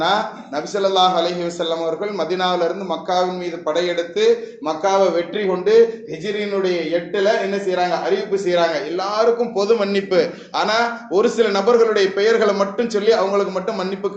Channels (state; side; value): identical; both; correlation 1.00